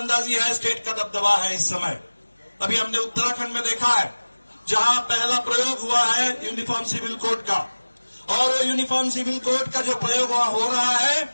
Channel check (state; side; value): inverted; both; correlation -1.00